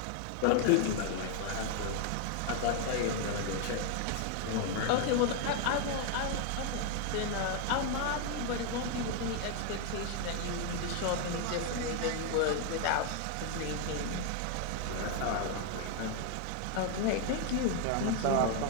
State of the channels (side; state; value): both; different; correlation 0.00